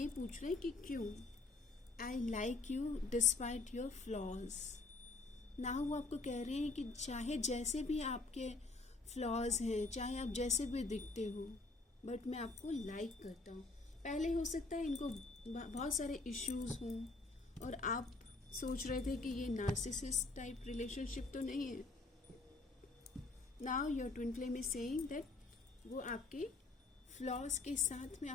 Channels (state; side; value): quieter; right; 3.6 dB